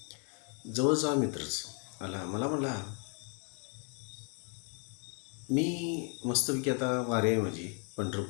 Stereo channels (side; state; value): right; quieter; 34.9 dB